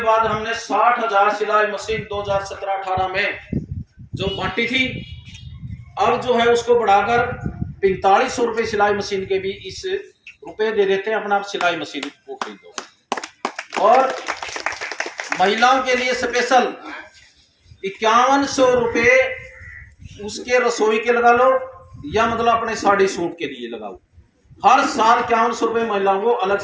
हमने 60,000 सिलाई मशीन 2017-18 में जो बांटी थी, अब जो है उसको बढ़ाकर 4500 रुपये सिलाई मशीन के भी इस रुपए दे देते हैं, अपना सिलाई मशीन को खरीदो। और महिलाओं के लिए स्पेशल 5100 रुपये उसके रसोई के लगा लो, या मतलब अपने साड़ी सूट के लिए लगाओ। हर साल 5100 रुपए महिलाओं को अलग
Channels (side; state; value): both; identical; correlation 1.00